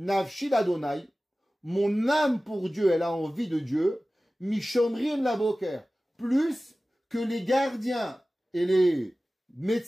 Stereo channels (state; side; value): normal; both; correlation 0.96